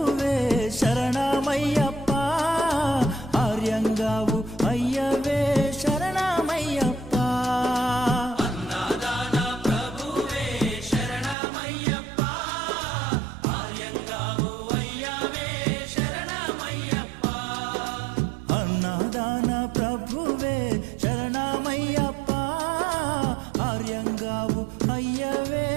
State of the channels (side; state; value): left; drops out; at 11.4 s